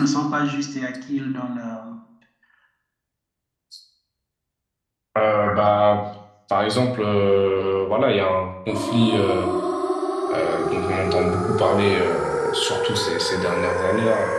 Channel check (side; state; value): both; identical; correlation 1.00